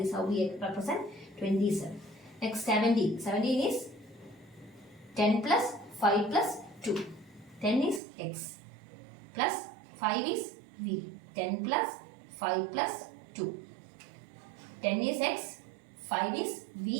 how we represent 27. Next 17. 17 is 10 plus 5 plus 2. 10 is x plus 5 is v. 10 plus 5 plus 2. 10 is x, 5 is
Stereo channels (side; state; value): left; drops out; at 8.0 s